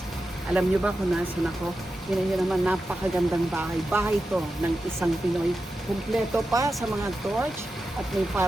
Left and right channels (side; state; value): both; normal; correlation 0.91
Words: Alam niyo ba kung nasan ako? Yun naman, napakagandang bahay. Bahay to ng isang Pinoy. Kumpleto pa sa mga torch at may